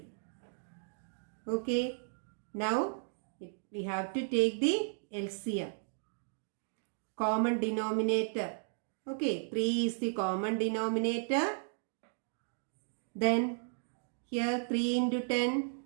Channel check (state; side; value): silent; left; digital silence